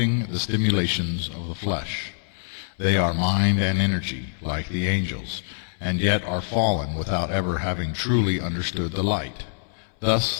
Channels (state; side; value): silent; right; 60 dB below the other